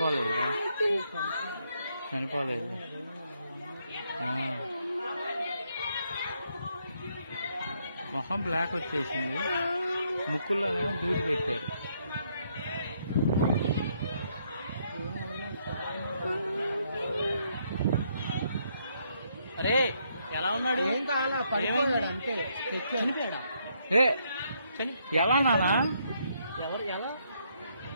చనిపోలేదు మొహం బ్లాక్ వచ్చేసింది ముక్కుల్లోనేమో దూది పెట్టారు అరే ఎలా ఉన్నాడు ఏం కావాలా పడిపోయాడు అంతే చనిపోయాడా ఎలా నానా ఎవరు ఎలా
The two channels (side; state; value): both; inverted; correlation -0.73